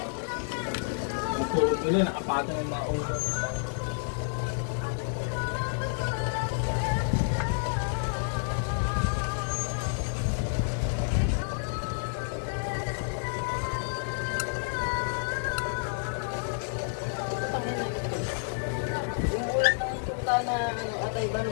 Matulog nila, nakapatong yung mga ulo. Yung ulam ng tuta na ano, atay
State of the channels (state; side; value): silent; right; digital silence